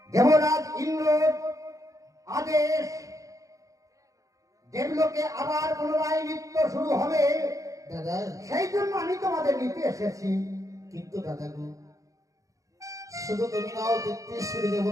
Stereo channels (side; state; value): left; late; 0.16 ms